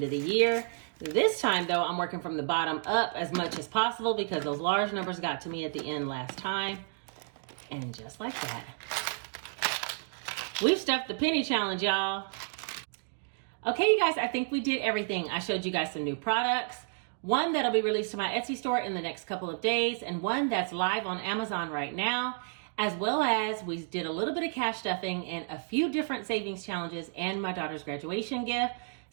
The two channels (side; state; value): left; silent; digital silence